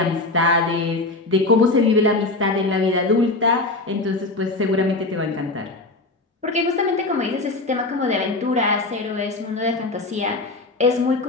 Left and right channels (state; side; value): quieter; right; 3.1 dB